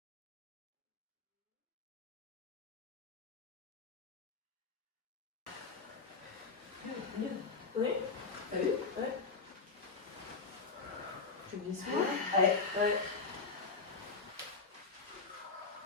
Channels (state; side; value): quieter; right; 4.5 dB